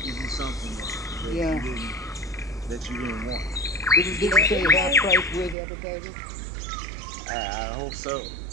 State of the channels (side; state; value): left; drops out; at 5.6 s